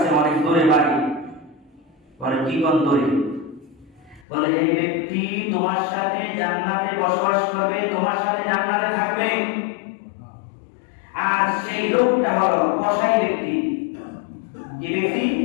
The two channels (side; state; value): right; drops out; at 4.2 s